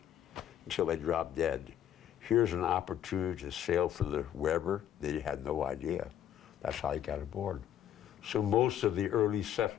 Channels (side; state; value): right; quieter; 10.5 dB